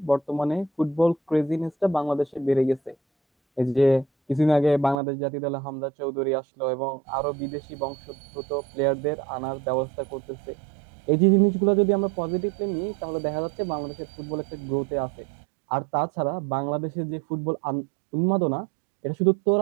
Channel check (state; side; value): drops out; left; at 5.0 s